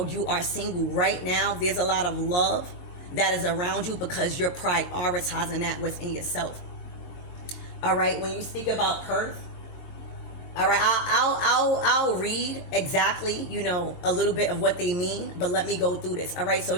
you are single right now, there's a lot of love that is around you because you're prioritizing that within yourself. All right, when you speak about Perth, all right, I'll read exactly, you know, a little bit of what they mean, but let me go through this. All right, so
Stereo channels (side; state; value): right; late; 22 ms